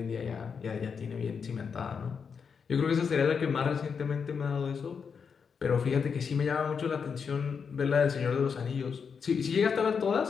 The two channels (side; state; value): right; quieter; 6.2 dB